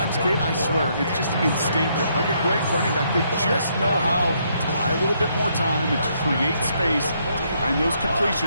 Kate, I swear, it's just instinctive. Like a great running back, they just know how to buy a little bit more time and to create space to find those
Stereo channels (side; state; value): both; inverted; correlation -0.73